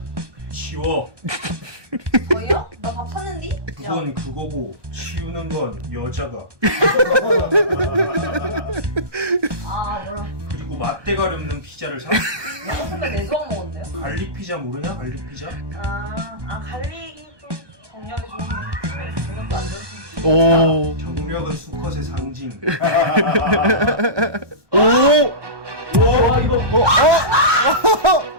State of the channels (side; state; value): left; late; 1.2 ms